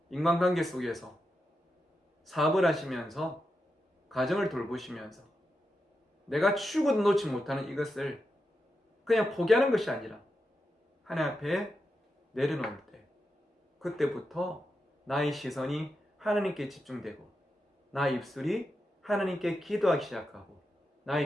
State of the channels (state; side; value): normal; both; correlation 0.87